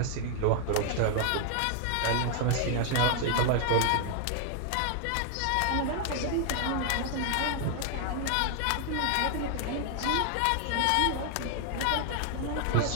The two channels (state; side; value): different; both; correlation 0.00